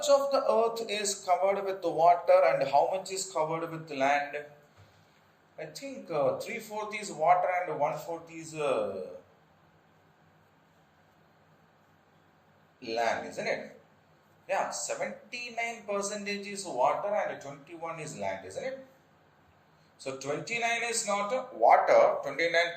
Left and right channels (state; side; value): identical; both; correlation 1.00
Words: of the Earth is covered with the water and how much is covered with the land? I think 3/4 is water and 1/4 is land, isn't it? Yeah, 79% is water and 21 is land, isn't it? So 29 is not water,